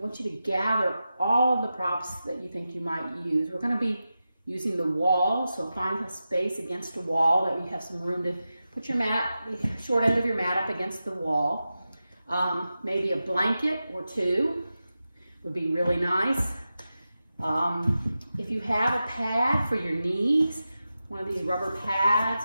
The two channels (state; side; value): inverted; both; correlation -0.92